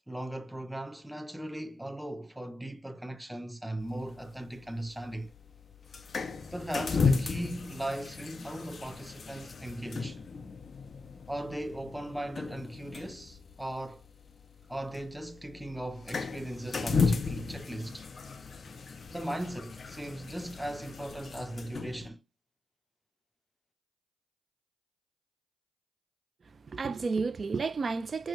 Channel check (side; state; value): both; normal; correlation 0.88